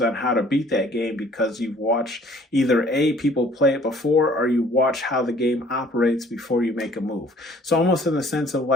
on how to beat that game because you've watched either people play it before, or you watch how the game operates before you make a move. So almost in the sense of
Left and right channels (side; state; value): both; normal; correlation 0.56